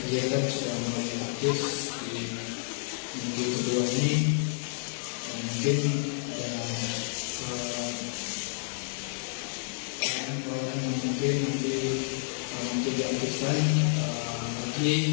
sudah mulai aktif di minggu kedua ini, dan mungkin ada pelayanan yang mungkin nanti diaktifkan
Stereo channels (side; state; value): right; silent; digital silence